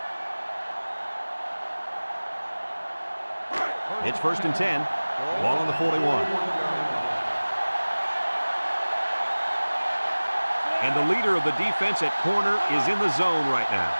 It's first and 10. Ball on the 41. And the leader of the defense at corner is in the zone right now.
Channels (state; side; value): inverted; both; correlation -1.00